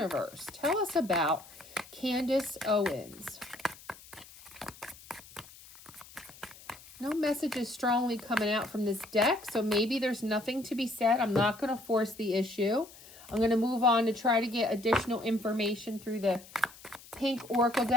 Tell us about Candace Owens. No messages strongly coming out from this deck, so maybe there's nothing to be said. I'm not going to force the issue. I'm going to move on to try to get additional information through the pink oracle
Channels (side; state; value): left; noise; hiss, 20 dB below the sound